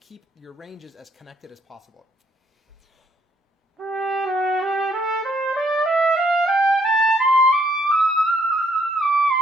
your ranges as connected as possible.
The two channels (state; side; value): normal; both; correlation 0.68